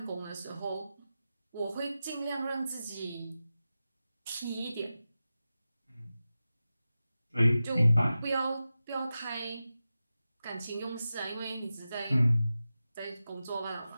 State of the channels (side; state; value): both; inverted; correlation -0.93